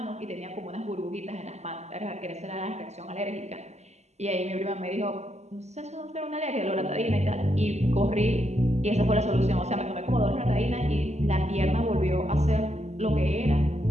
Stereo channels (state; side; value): late; left; 0.33 ms